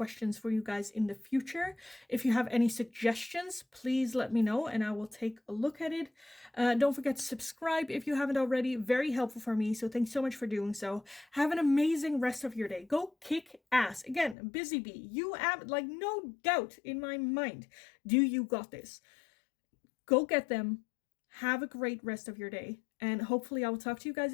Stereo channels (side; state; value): right; drops out; at 14.4 s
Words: for you guys in the future. If you have any suggestions, please let me know and I will take a look at it. Don't forget to subscribe if you haven't already. Very helpful for me, so thanks so much for doing so. Have an amazing rest of your day. Go kick ass. Again, busy bee, you have like no doubt in my mind, do you got this. Go get them. Have a great rest of your day, and hopefully I will talk to you guys